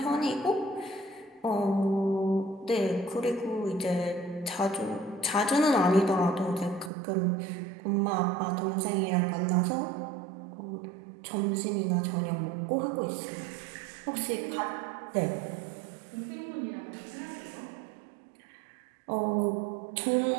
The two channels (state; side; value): drops out; left; at 6.9 s